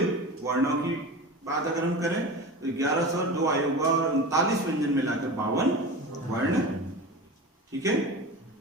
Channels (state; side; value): normal; both; correlation 0.31